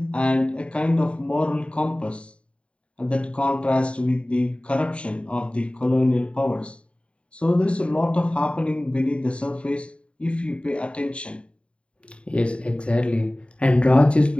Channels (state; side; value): late; right; 0.059 ms